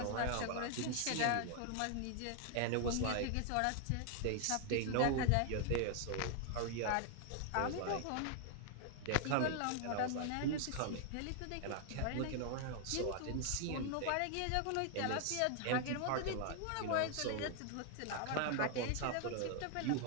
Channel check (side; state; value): both; different; correlation 0.00